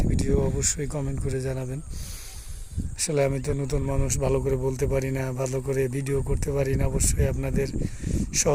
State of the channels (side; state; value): both; identical; correlation 1.00